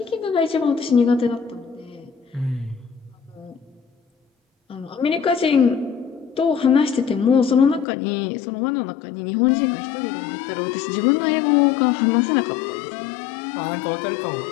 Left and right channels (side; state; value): right; drops out; at 7.9 s